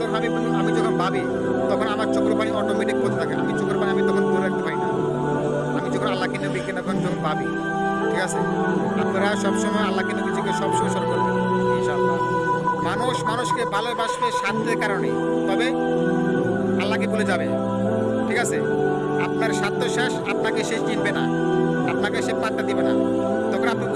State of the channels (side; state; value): both; identical; correlation 1.00